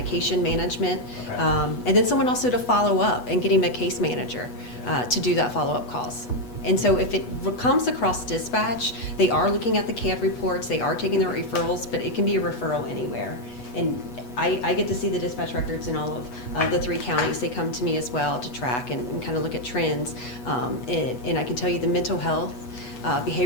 management. Okay. And then someone also to follow up and getting a case manager to do that follow-up calls. And so if it comes across dispatch, they are looking at the CAD reports, they are taking their referrals, but it can be a referral anywhere. And I get to see the dispatch records in all of the 3 counties. They come to me as well to track and kind of look at trends. And I can tell you the mental health,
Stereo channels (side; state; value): right; late; 8.2 ms